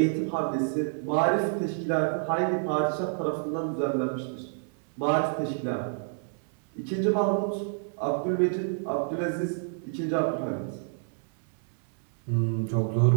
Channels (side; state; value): left; silent; 59 dB below the other